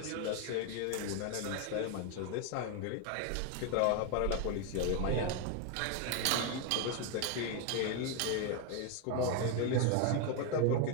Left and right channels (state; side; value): different; both; correlation 0.01